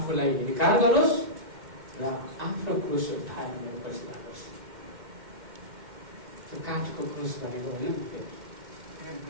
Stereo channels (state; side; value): late; left; 2.1 ms